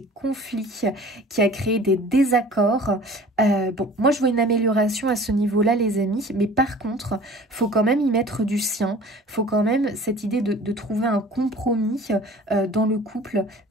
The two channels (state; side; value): normal; both; correlation 0.45